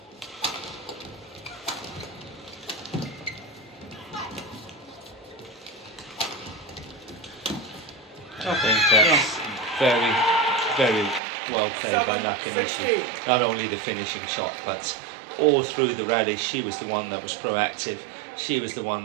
I think that's very, very well played by Nakanishi. Not only the finishing shot, but all through the rally, she was the one that was proactive. She was the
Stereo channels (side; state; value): left; drops out; at 11.2 s